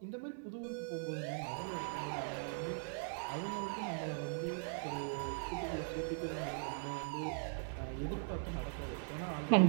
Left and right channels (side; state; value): left; silent; digital silence